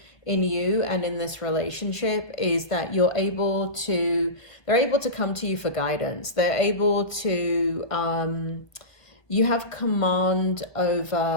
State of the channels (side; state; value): right; late; 1.2 ms